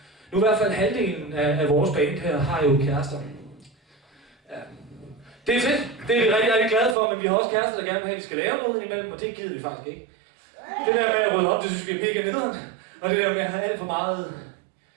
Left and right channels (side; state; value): left; drops out; at 7.0 s